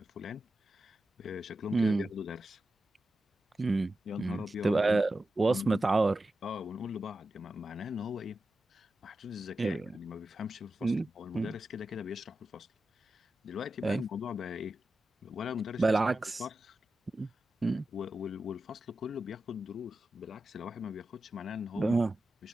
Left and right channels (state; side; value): normal; both; correlation 0.91